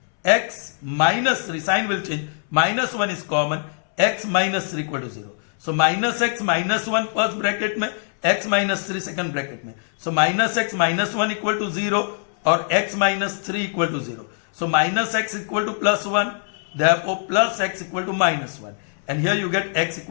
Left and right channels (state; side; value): silent; right; 64 dB below the other